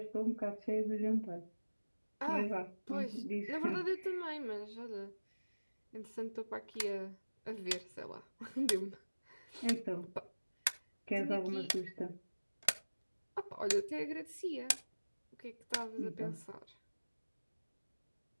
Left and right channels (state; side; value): inverted; both; correlation -1.00